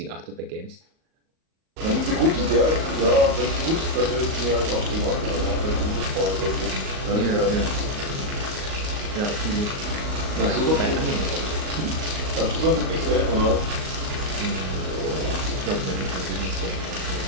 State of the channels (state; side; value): late; left; 38 ms